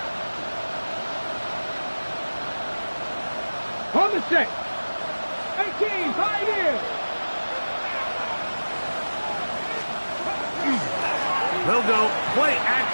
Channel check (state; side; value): inverted; both; correlation -1.00